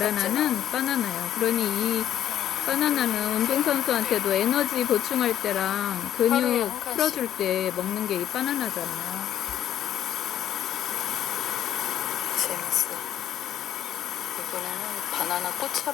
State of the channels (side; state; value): right; quieter; 11.0 dB